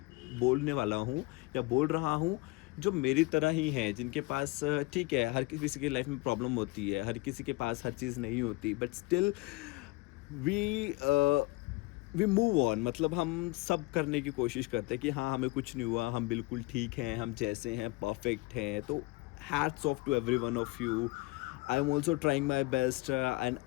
बोलने वाला हूँ, या बोल रहा हूँ, जो मेरी तरह ही हैं, जिनके पास ठीक है, हर किसी की लाइफ में प्रॉब्लम होती है, हर किसी के पास हर चीज़ नहीं होती, but still we we move on. मतलब हम सब करने की कोशिश करते हैं कि हाँ हमें कुछ नहीं हुआ, हम बिल्कुल ठीक हैं, हम जैसे हैं परफेक्ट हैं। तो hats off to every one of you. I am also trying my best and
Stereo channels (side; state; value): right; quieter; 22.8 dB